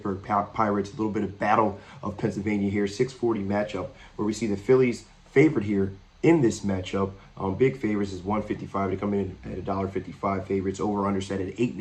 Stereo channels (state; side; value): identical; both; correlation 1.00